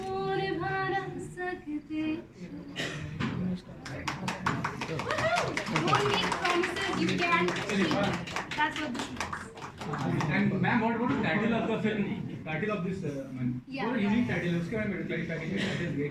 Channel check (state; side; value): identical; both; correlation 1.00